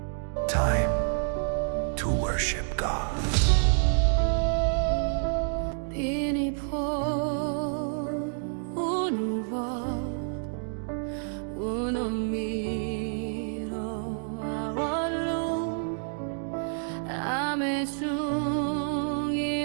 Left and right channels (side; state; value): left; silent; digital silence